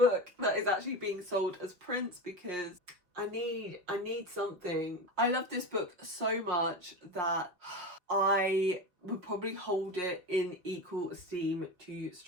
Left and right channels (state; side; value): late; left; 5.4 ms